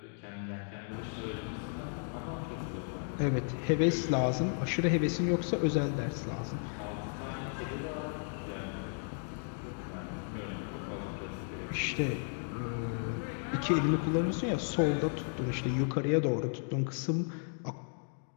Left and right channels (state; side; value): silent; right; 55 dB below the other